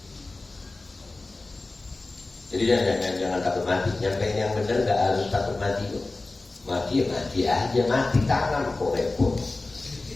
Jadi jangan takut mati. Nyampein yang benar gak harus takut mati kok. Mati ya mati aja, mati tangan kok repot.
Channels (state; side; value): quieter; right; 3.2 dB